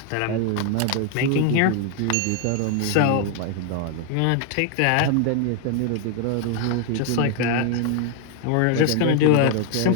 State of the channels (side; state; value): both; different; correlation 0.00